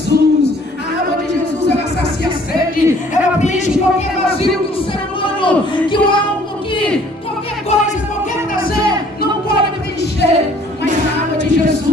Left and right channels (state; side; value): normal; both; correlation 0.57